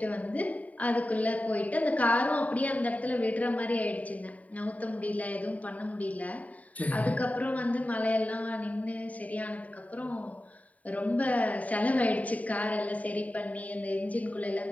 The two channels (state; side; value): late; right; 0.070 ms